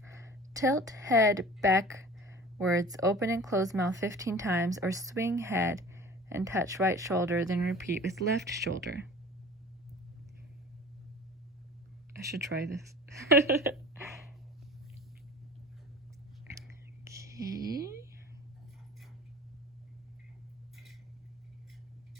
Tilt head backwards, open and close mouth 15 times, or swing head and touch right shoulder, then repeat with left shoulder. I should try this. Okay.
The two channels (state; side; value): normal; both; correlation 0.42